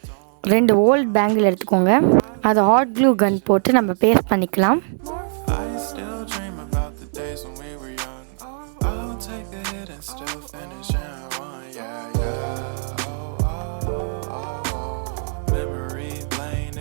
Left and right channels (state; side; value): silent; left; 64 dB below the other